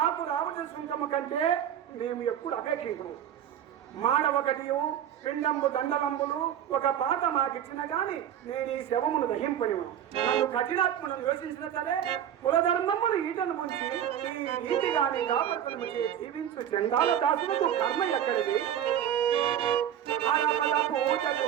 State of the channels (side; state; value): left; quieter; 10.1 dB